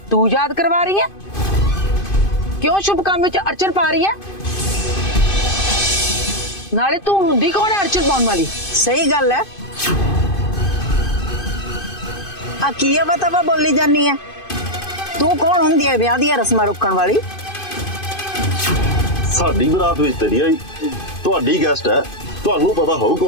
तू याद करवा रही है? क्यों शुभ काम विच अड़चन पा रही है? नाले तू हुंदी कौन है अड़चन पाउण वाली? सही गल है। आ की बता बोली जानी है? तू कौन हुंदी है ब्याह दी रस्मां रोकण वाली? साडी बरात विच तेरी आई, तुहाडी गेस्ट है, तुहानू पता हो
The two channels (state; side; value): late; right; 2.5 ms